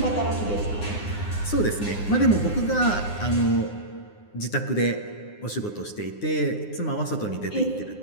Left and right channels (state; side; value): late; right; 9.7 ms